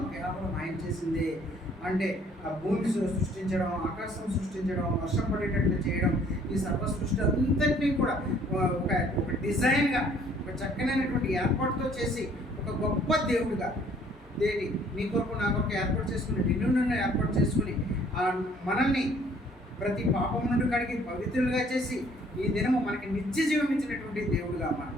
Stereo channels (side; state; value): both; normal; correlation 0.59